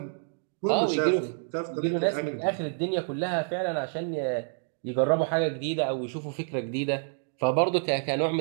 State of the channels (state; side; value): silent; left; digital silence